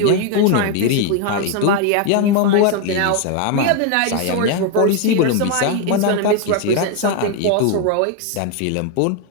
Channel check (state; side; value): different; both; correlation 0.01